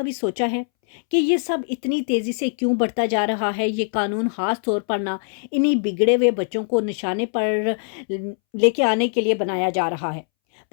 سوچا ہے کہ یہ سب اتنی تیزی سے کیوں بڑھتا جا رہا ہے؟ یہ قانون خاص طور پر نہ انہی بگڑے ہوئے بچوں کو نشانے پر لے کے آنے کے لیے بنایا جا رہا ہے،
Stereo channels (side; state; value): right; silent; 64 dB below the other